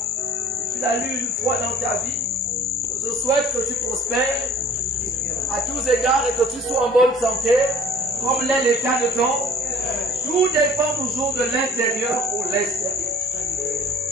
si tu l'as lu une fois dans ta vie, je souhaite que tu prospères à tous égards et que tu sois en bonne santé, comme l'est l'état de ton. Tout dépend toujours de l'intérieur pour l'extérieur.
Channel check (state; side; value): normal; both; correlation 0.50